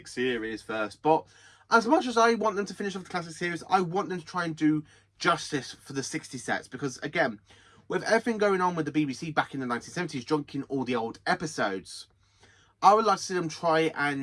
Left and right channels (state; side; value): identical; both; correlation 1.00